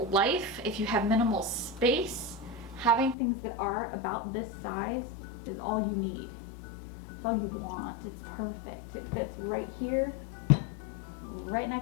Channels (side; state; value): right; drops out; at 3.2 s